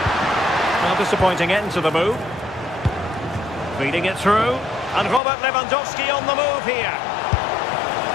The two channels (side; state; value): right; drops out; at 5.2 s